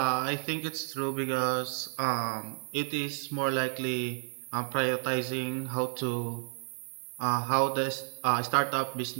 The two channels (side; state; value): left; silent; digital silence